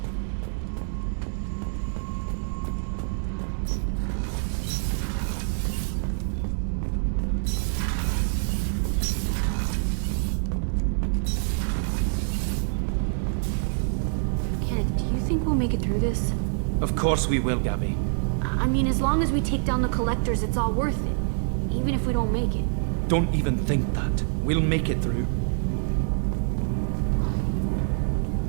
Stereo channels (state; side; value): silent; left; digital silence